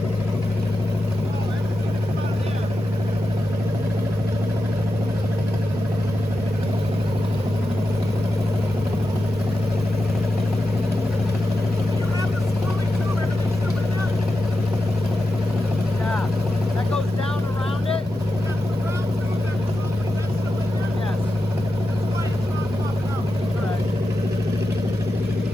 Yeah. That goes down around it? Yes. Alright.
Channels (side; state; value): both; normal; correlation 0.90